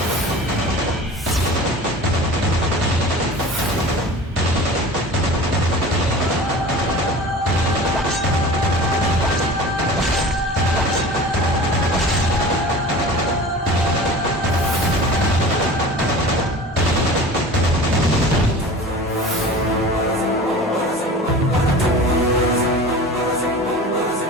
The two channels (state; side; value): normal; both; correlation 0.38